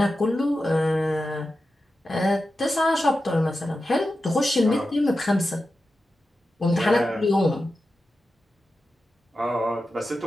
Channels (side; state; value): both; normal; correlation 0.92